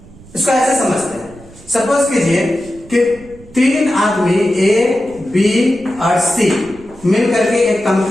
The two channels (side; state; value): right; noise; rumble, 22 dB below the sound